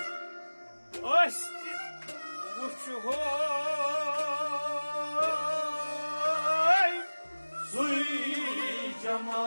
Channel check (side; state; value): both; inverted; correlation -1.00